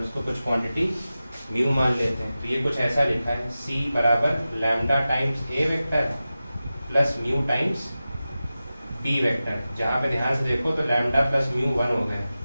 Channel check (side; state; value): both; inverted; correlation -0.94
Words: इसको कुछ क्वांटिटी म्यू मान लेते हैं। तो ये कुछ ऐसा लिखा है c बराबर lambda times a vector plus mu times b vector. जहाँ पे ध्यान से देखो तो लैम्डा प्लस म्यू 1 हो गया,